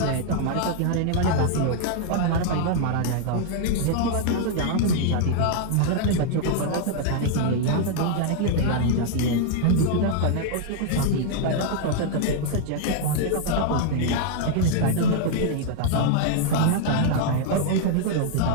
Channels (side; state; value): both; different; correlation 0.00